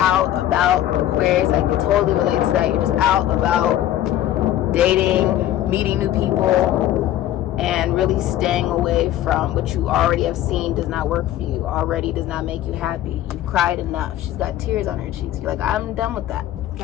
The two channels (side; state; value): right; quieter; 12.8 dB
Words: about, Aquarius, I can totally relate to that. You're just out about dating, meeting new people, and really staying away from what you already have seen does not work for you, already does not make you happy. You've cried enough. She's got tears on her cheeks. You're like, I'm done with that.